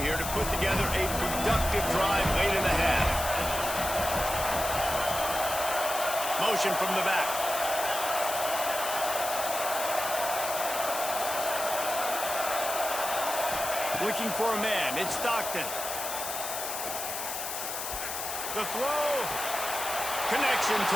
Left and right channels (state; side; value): noise; left; hiss, 5 dB below the sound